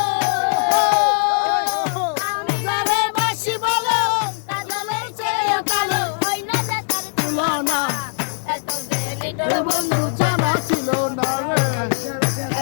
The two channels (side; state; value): right; silent; 64 dB below the other